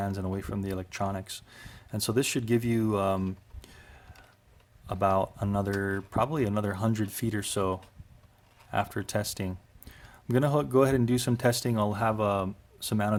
and away from the electronics. And so this should give you about probably another 100 feet or so after testing. I'm gonna go ahead and do some testing. I'll have some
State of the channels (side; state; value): both; identical; correlation 1.00